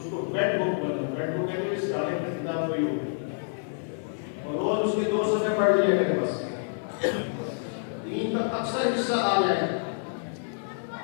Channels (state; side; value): silent; right; digital silence